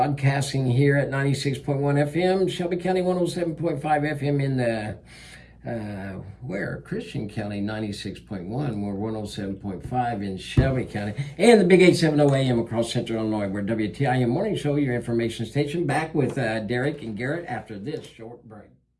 here at 96.1 FM, Shelby County 107.5 FM in the, Christian County 96.1, we're 107.5 in Shelby County, and the big 870 AM across Central Illinois. We're WTIM Morning Show, your information station, back with Derek and Garrett after this short break.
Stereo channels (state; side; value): identical; both; correlation 1.00